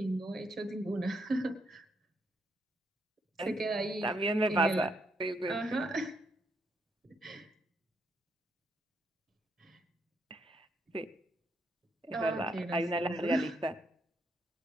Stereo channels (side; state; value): both; normal; correlation 0.76